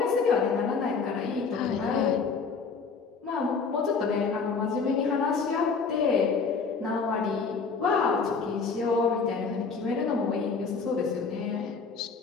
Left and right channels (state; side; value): quieter; right; 5.0 dB